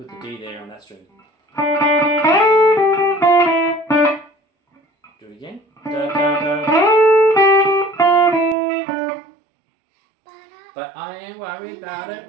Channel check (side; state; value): left; drops out; at 8.6 s